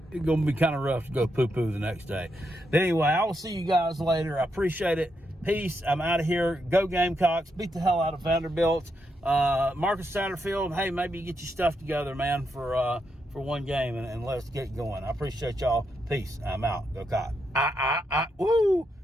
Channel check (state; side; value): normal; both; correlation 0.82